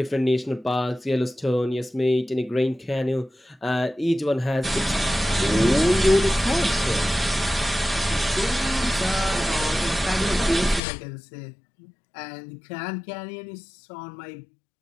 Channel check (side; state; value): right; drops out; at 10.8 s